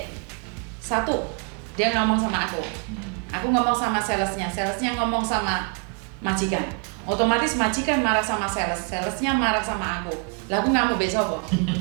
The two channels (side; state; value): left; quieter; 36.3 dB